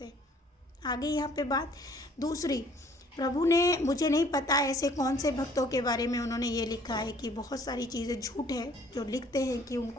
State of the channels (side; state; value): both; normal; correlation 0.57